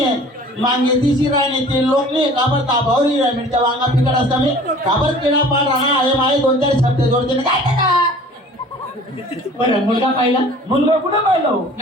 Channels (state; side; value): normal; both; correlation 0.47